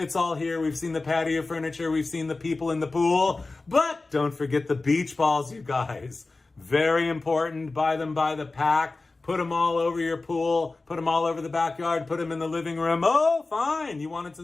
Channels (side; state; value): right; quieter; 3.4 dB